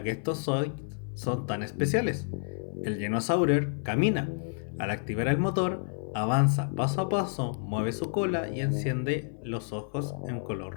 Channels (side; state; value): right; silent; 58 dB below the other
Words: que estos Zoids son tan especiales. El Genosaurer camina. Al activar el motor, avanza paso a paso, mueve su cola y enciende los ojos en color